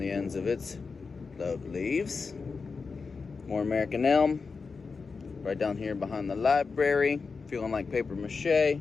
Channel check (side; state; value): right; quieter; 4.8 dB